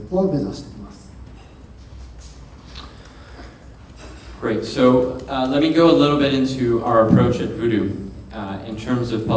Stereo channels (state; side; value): identical; both; correlation 1.00